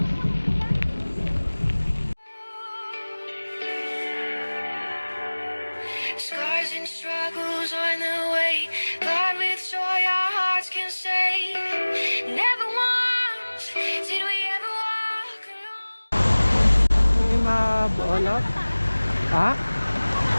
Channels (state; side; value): inverted; both; correlation -1.00